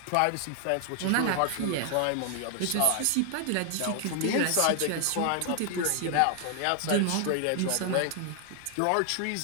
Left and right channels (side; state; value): both; different; correlation 0.00